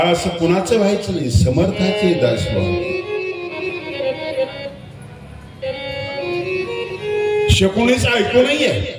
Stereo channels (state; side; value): identical; both; correlation 1.00